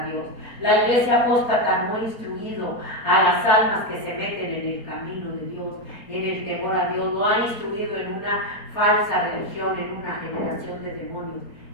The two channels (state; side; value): late; right; 4.3 ms